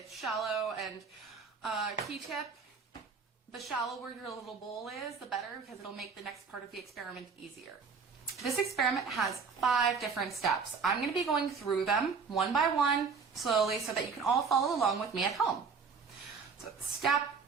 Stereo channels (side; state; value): left; quieter; 5.4 dB